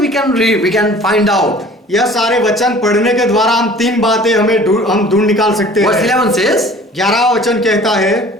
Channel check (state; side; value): normal; both; correlation 0.48